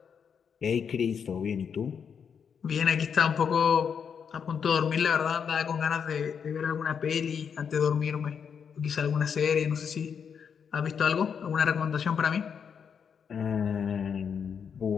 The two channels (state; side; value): quieter; right; 7.0 dB